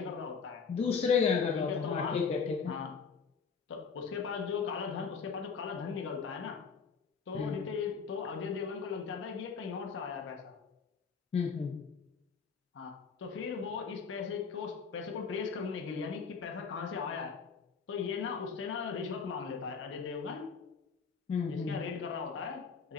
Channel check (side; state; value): right; quieter; 5.7 dB